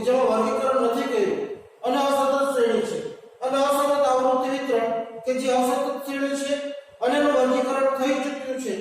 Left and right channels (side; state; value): both; identical; correlation 1.00